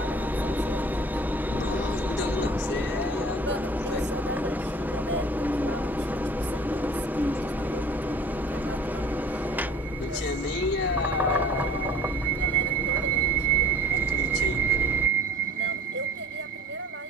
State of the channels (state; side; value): normal; both; correlation 0.48